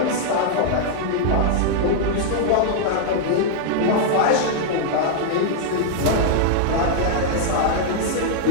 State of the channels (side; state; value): both; different; correlation -0.01